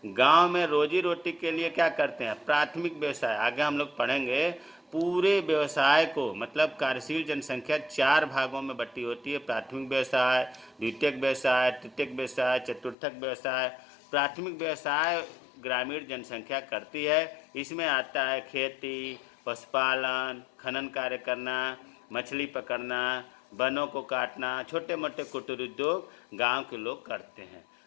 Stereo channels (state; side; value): drops out; right; at 13.0 s